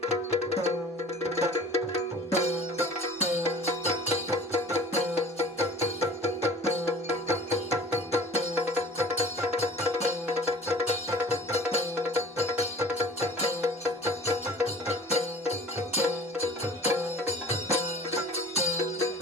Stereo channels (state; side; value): normal; both; correlation 0.46